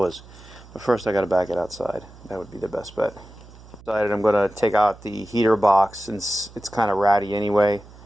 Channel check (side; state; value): right; noise; hum, 21 dB below the sound